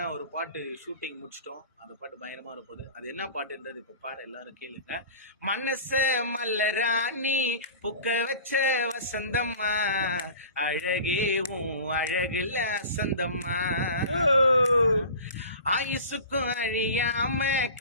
ஒரு பாட்டு ஷூட்டிங் முடிச்சிட்டோம். அந்த பாட்டு பயங்கரமா இருப்போது. அது என்ன பாட்டுன்றது இப்போ பாட எல்லாரும் கேளுங்க. மனச மல்லராணி புக்க வச்ச வசந்தம்மா, அழகேவும் அழகுல அசந்தம்மா, ஆயுசுக்கும் அழியாம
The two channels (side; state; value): both; inverted; correlation -0.39